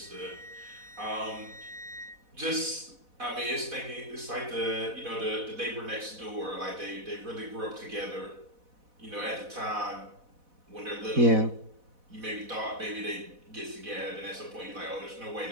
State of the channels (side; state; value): left; late; 4.1 ms